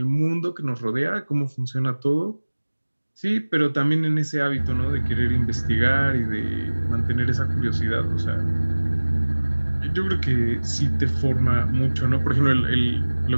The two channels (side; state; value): both; inverted; correlation -1.00